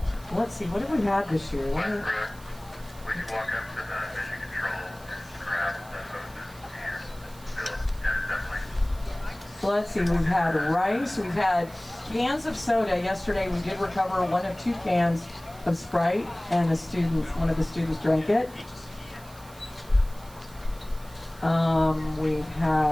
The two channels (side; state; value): right; noise; hiss, 22 dB below the sound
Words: Let's see, what have we had this year? When you walk up to the mission control and grab the hoses and fill, yeah, definitely. Let's see, we've had rice, we've had cans of soda. Yesterday we did recover 1 of 2 cans of Sprite, and one of the students drank it. We've